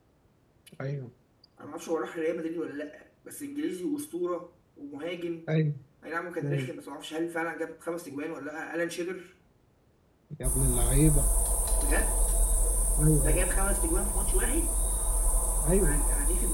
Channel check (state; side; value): identical; both; correlation 1.00